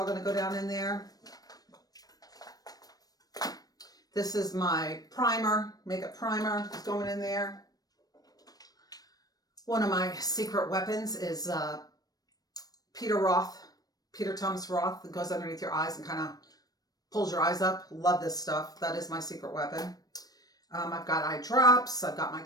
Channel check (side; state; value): right; late; 0.18 ms